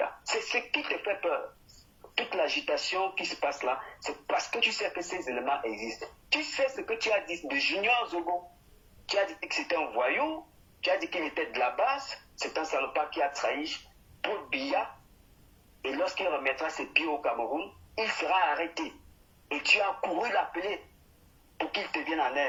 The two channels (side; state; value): both; identical; correlation 1.00